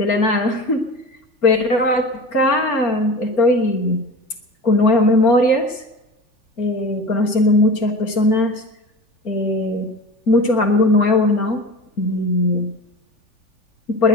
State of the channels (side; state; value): right; late; 3.4 ms